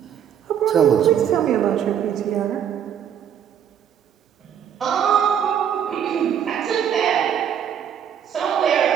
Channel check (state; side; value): quieter; left; 9.0 dB